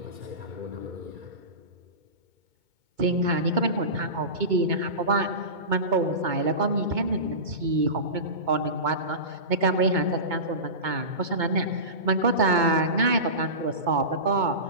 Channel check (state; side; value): late; left; 2.2 ms